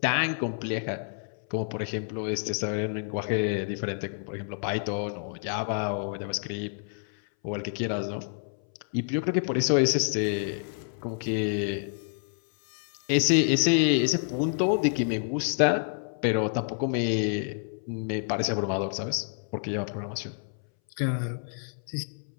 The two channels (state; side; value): silent; right; 59 dB below the other